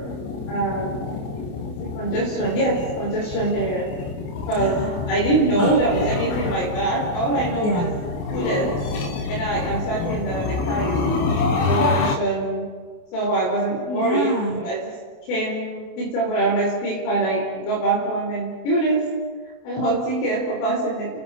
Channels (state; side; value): late; right; 28 ms